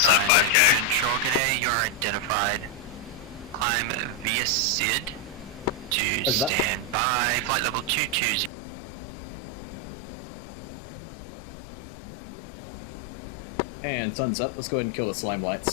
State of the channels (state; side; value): drops out; right; at 8.5 s